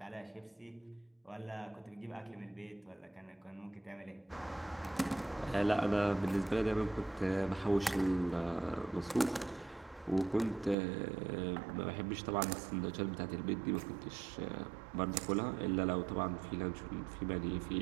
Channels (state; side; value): drops out; left; at 10.8 s